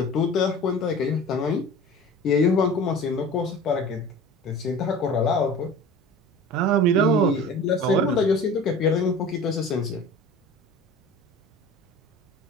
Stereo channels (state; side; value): normal; both; correlation 0.39